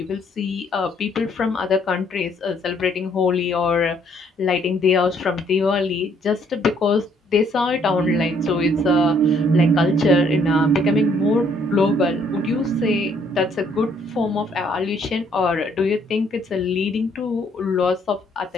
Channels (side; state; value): both; normal; correlation 0.66